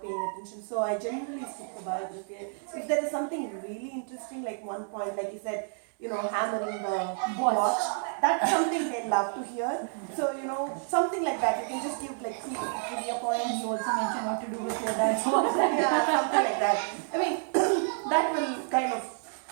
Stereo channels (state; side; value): silent; left; digital silence